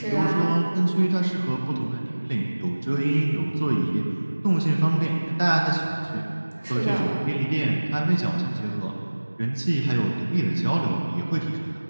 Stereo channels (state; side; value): inverted; both; correlation -1.00